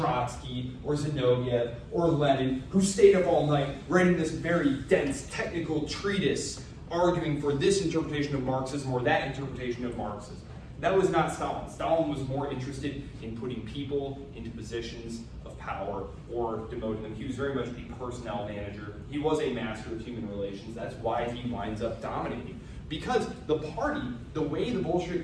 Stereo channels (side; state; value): both; identical; correlation 1.00